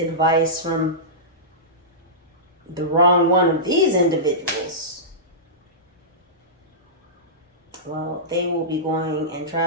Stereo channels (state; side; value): normal; both; correlation -0.17